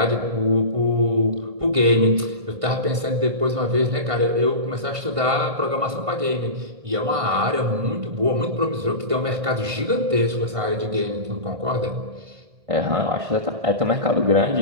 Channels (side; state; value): left; late; 1.5 ms